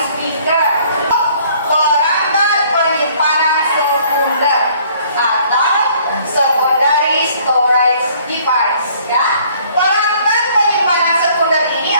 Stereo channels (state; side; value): inverted; both; correlation -0.59